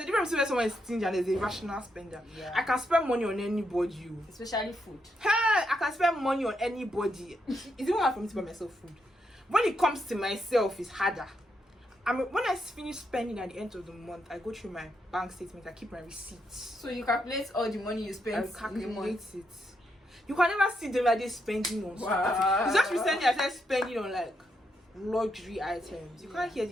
a difference between someone is stingy and there's a rational spender. Yeah. I can spend money on anybody. Especially food. Hey, I can spend money on anybody. It's even hard for me to buy myself food. When it comes to myself, it's harder. When I finish spending at the end of the month, I go through my bank statement. I keep my receipts. So you calculate all the money you spend. I calculate it. You can never see them like this spending on stuff. It's just recently I started spending on like luxury items. You can't hear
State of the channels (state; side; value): normal; both; correlation 0.81